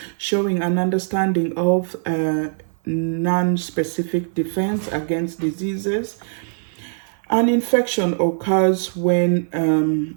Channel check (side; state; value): left; silent; 65 dB below the other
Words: showing an understanding of non-specific defense against diseases. An infection occurs